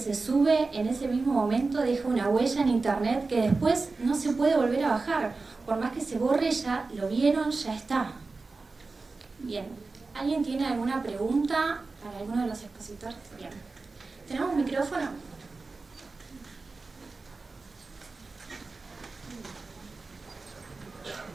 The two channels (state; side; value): quieter; left; 3.8 dB